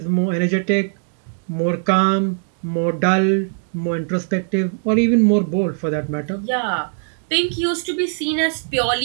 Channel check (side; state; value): left; silent; digital silence